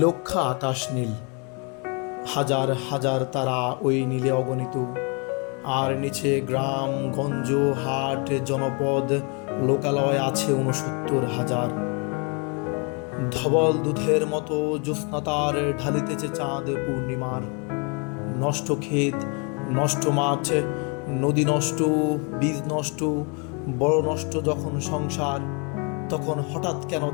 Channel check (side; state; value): right; quieter; 34.2 dB